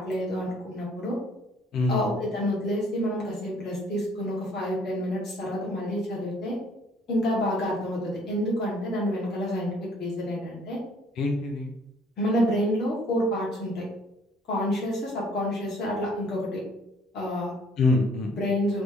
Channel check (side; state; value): both; normal; correlation 0.60